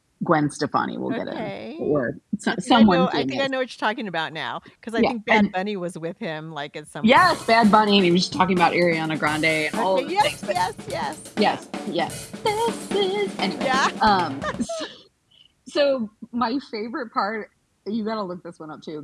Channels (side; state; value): both; identical; correlation 1.00